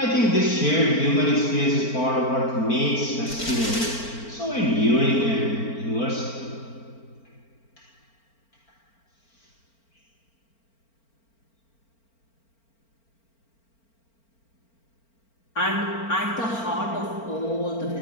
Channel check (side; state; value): right; late; 4.4 ms